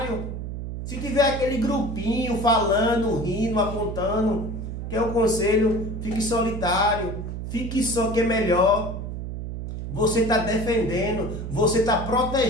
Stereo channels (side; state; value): right; noise; hum, 6 dB below the sound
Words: Se tiver aquele grupinho falando, rindo, apontando, que é o conselho, fique solitário, fique só que é melhor. Você está defendendo, você está